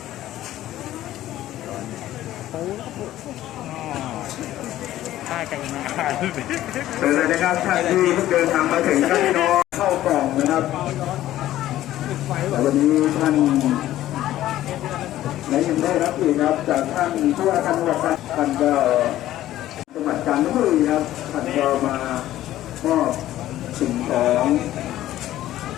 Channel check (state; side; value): quieter; right; 13.9 dB